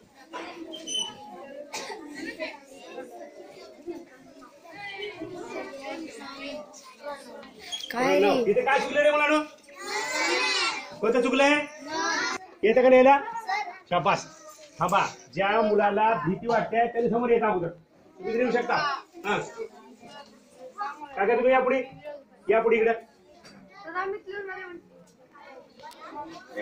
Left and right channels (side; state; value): both; identical; correlation 1.00